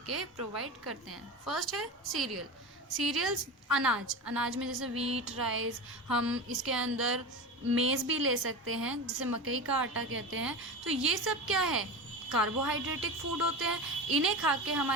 प्रोवाइड करते हैं. फर्स्ट है सीरियल. सीरियल्स, अनाज में जैसे वीट, राइस, हम इसके अंदर मेज़ भी ले सकते हैं जिसे मकई का आटा कहते हैं। तो ये सब क्या है, कार्बोहाइड्रेटिक फूड होते हैं। इन्हें खा के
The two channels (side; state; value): both; normal; correlation 0.26